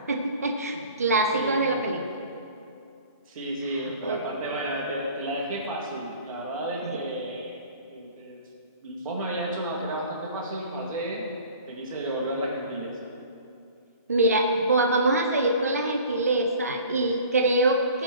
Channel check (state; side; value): inverted; both; correlation -0.46